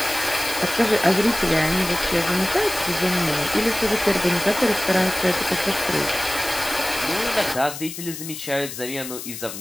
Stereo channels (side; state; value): left; noise; hiss, 10 dB below the sound